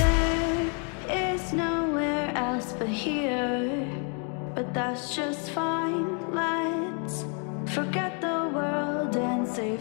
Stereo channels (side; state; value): right; quieter; 39.7 dB